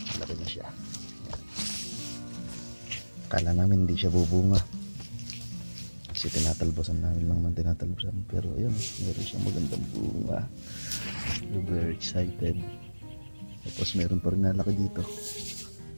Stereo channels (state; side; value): inverted; both; correlation -1.00